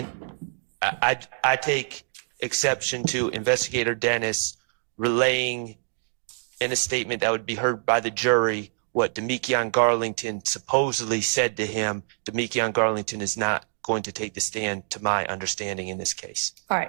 I take exception to Investigator Dennis relaying in a statement that would be heard by the jury what Demetrion Garlington supposedly said to him. Demetrion Garlington is not going to take the stand, to my understanding, in this case. All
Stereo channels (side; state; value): left; silent; digital silence